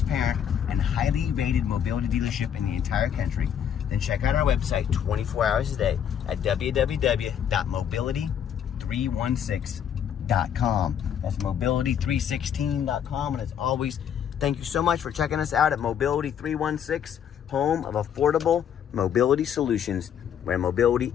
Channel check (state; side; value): quieter; right; 8.9 dB